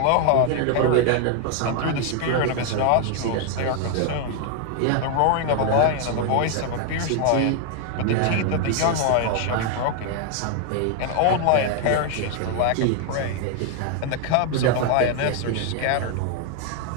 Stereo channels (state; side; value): different; both; correlation 0.00